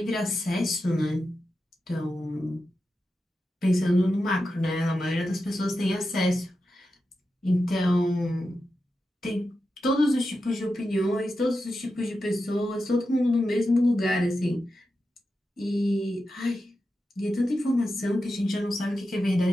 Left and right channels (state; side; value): normal; both; correlation 0.90